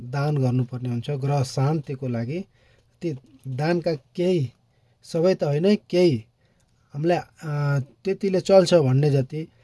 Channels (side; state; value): both; identical; correlation 1.00